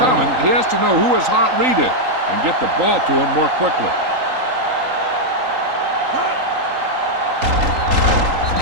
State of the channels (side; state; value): left; late; 3.8 ms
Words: he has to know who his hot read is and get the ball to him more quickly.